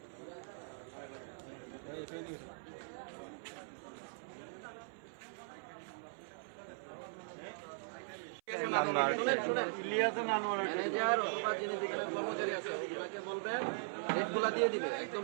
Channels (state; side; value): silent; left; 51 dB below the other